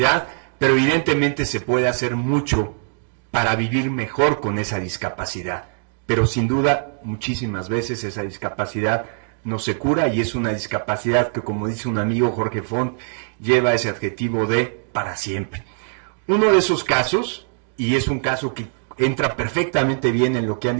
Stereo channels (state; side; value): silent; left; digital silence